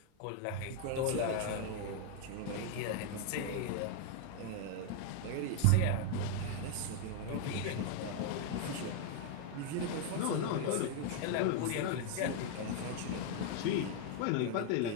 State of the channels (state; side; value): different; both; correlation 0.00